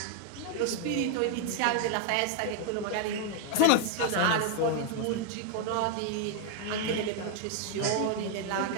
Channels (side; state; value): both; different; correlation 0.00